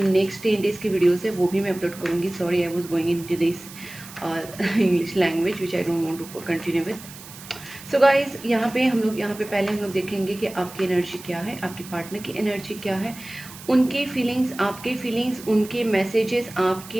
नेक्स्ट 10 डेज की वीडियोज़ है वो भी मैं अपलोड करूँगी। Sorry, I was going into this English language which I don't want to continue with. So guys यहाँ पे पहले हम लोग देखेंगे कि आपकी एनर्जी क्या है, आपके पार्टनर की एनर्जी क्या है, उनके फीलिंग्स, आपके फीलिंग्स, उनके मैसेजेस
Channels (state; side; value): noise; right; hiss, 16 dB below the sound